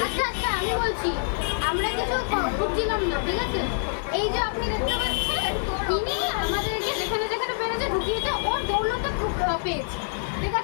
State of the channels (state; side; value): silent; right; 61 dB below the other